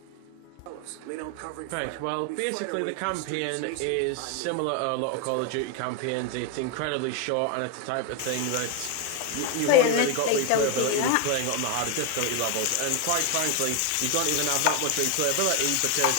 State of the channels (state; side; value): different; both; correlation 0.01